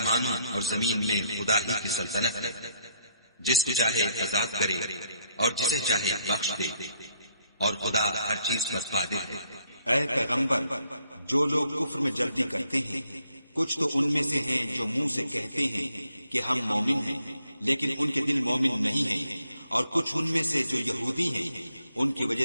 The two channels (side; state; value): both; inverted; correlation -0.71